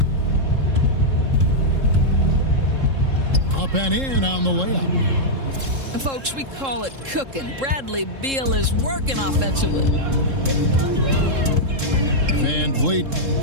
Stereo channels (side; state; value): left; late; 3.7 ms